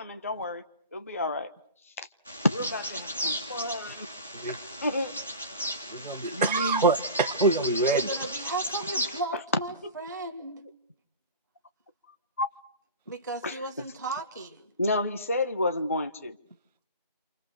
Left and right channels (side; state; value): both; inverted; correlation -0.33